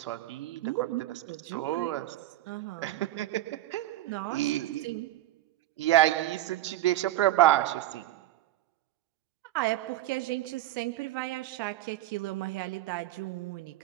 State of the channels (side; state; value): left; quieter; 14.8 dB